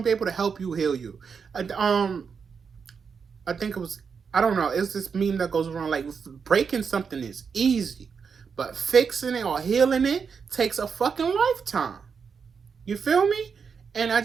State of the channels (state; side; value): quieter; left; 6.0 dB